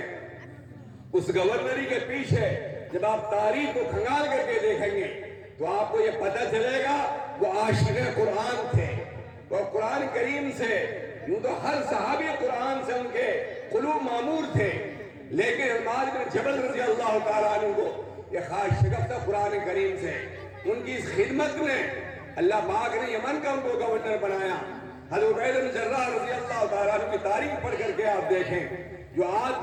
اس گورنری کے پیچھے جب آپ تاریخ کو کھنگال کر کے دیکھیں گے تو آپ کو یہ پتہ چلے گا وہ عاشق قرآن تھے، وہ قرآن کریم سے، یوں تو ہر صحابی قرآن سے ان کے قلوب معمور تھے، لیکن معاذ بن جبل رضی اللہ تعالیٰ عنہ کو یہ خاص شغف تھا قرآن کریم سے۔ ان کی اس خدمت میں اللہ پاک نے یمن کا ان کو گورنر بنایا۔ حضرت عبید بن جراح رضی اللہ تعالیٰ عنہ کی تاریخ پڑھ کر کے آپ دیکھیں، جو آج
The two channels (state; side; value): identical; both; correlation 1.00